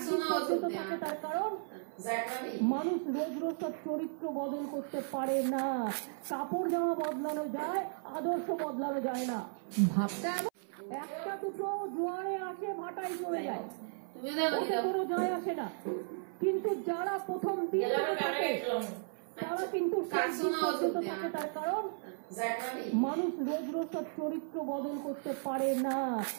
পর্যন্ত থাকে। তার কারণ মানুষ রোজ রোজ তার চরিত্র বদল করতে পারে না। কাপড় জামা বদলানো যায়, আদর্শ বদলানো যায় না। ভাবতে একটা দুটো জোয়ারে আসে ভাটায় চলে যায়, কোনো যায় আসে না। কিন্তু যারা প্রথম দিন থাকে তারা কিন্তু পর্যন্ত থাকে। তার কারণ মানুষ রোজ রোজ তার চরিত্র বদল করতে পারে না।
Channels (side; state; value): left; silent; 54 dB below the other